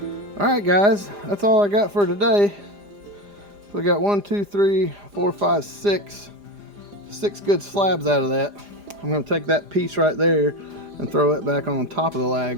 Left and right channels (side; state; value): left; late; 4.9 ms